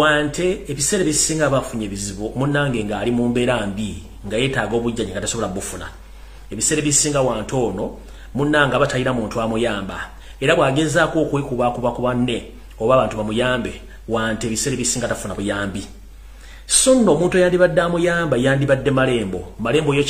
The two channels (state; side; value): identical; both; correlation 1.00